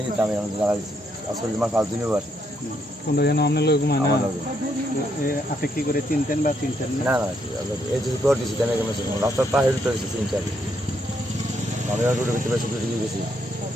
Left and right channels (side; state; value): both; normal; correlation 0.75